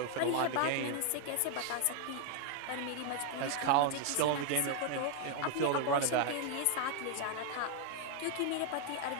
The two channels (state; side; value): different; both; correlation 0.00